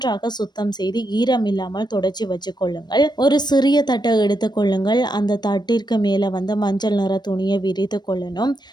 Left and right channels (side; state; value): right; late; 0.21 ms